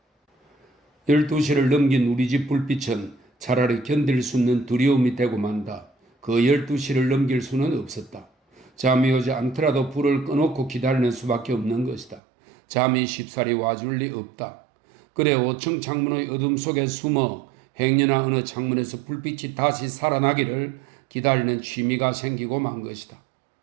12시를 넘긴 우리 집 불빛은 차라리 견딜 수 없는 두려움이 되고 만다. 그 12시를 넘길 수는 없었다. 잠이 오지 않더라도 불을 꺼놓고 기다리는 수밖에 없는 것이다. 잠이 쉽사리 와줄 리 없다. 그래 5층 창문의 어둠 속에 숨어 행여나 어느 창문에서 불빛이 다시 살아나기를 기다리는 취미가 생기고 만 것이다.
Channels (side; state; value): left; drops out; at 12.2 s